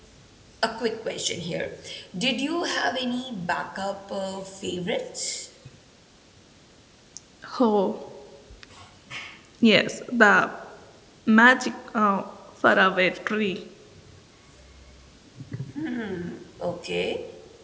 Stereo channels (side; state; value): both; identical; correlation 1.00